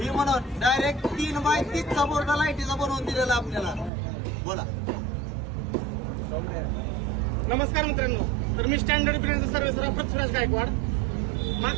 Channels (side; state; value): left; drops out; at 3.9 s